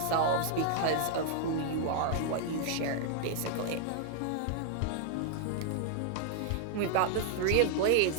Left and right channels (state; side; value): different; both; correlation -0.01